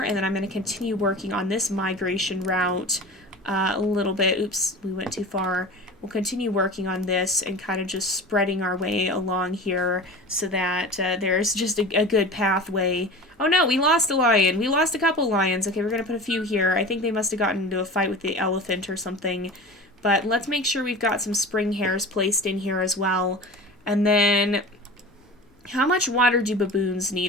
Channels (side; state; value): both; normal; correlation 0.35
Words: and then I'm going to continue working on this migration route a little bit. Oops, we went too far. We'll continue working on this and kind of just spreading our way along here so that there's just a good pathway. Oh no, we lost a lion. We lost a couple lions. Okay, we're going to put a few here. I think they must have gotten into a fight with the elephant or something. But let's make sure we've got some spring hares placed in here as well. And then, how much water do baboons